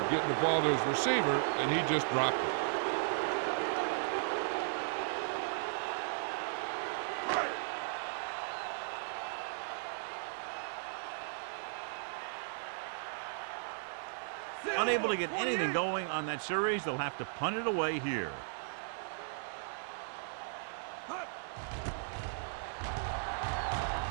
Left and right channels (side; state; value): left; silent; digital silence